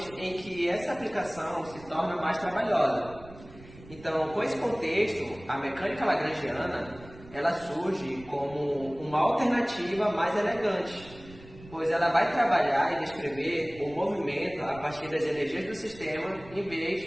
em que essa aplicação se torna mais trabalhosa. Então, com esse contexto, a mecânica lagrangiana ela surge como uma alternativa mais elegante, pois ela vai trabalhar e descrever o movimento a partir das energias do sistema, em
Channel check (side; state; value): right; noise; rumble, 19 dB below the sound